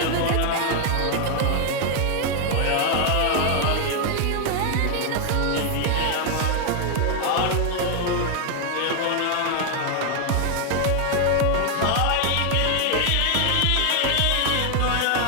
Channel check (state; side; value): different; both; correlation 0.00